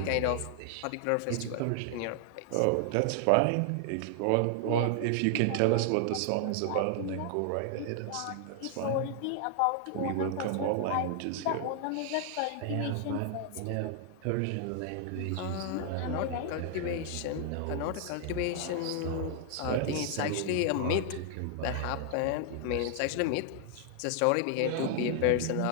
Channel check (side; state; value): both; different; correlation 0.00